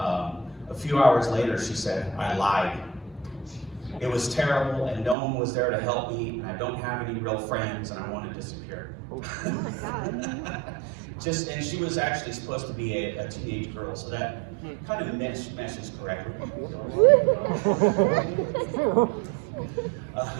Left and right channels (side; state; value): left; drops out; at 5.2 s